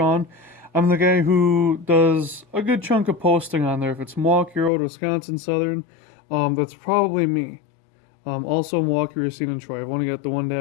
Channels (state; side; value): drops out; right; at 4.7 s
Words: I'm the guy who does a good chunk of posting on there. If it's Milwaukee Road, Wisconsin Southern, that's probably me. Also Milwaukee, Racine, and Troy. I've only got the